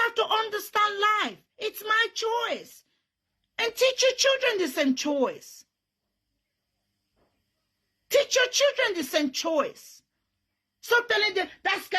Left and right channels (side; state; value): both; identical; correlation 1.00